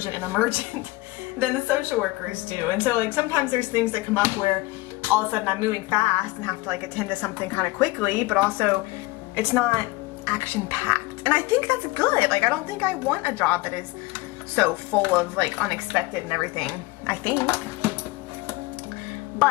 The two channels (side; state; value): right; quieter; 21.3 dB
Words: and emergent than the social workers do. And so like sometimes there's things that come up where all of a sudden I'm moving fast and have to like attend to something kind of quickly, but also it's not action packed. And I think that's good. Like I don't think I want a job that is so full of like unexpected and everything, I think.